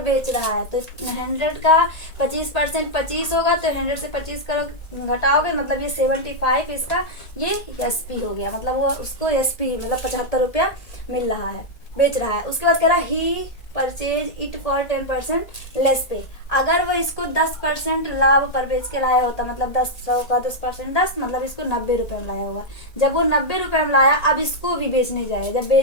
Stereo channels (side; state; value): right; late; 1.8 ms